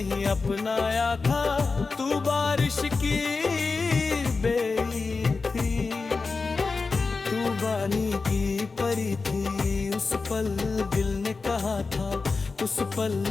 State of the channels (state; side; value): quieter; right; 4.2 dB